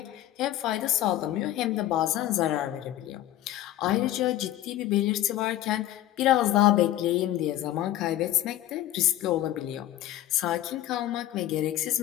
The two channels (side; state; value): right; quieter; 13.8 dB